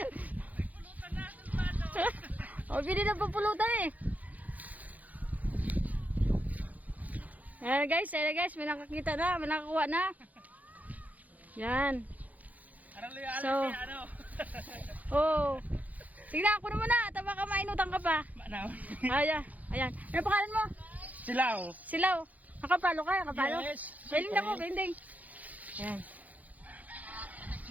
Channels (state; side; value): late; left; 0.077 ms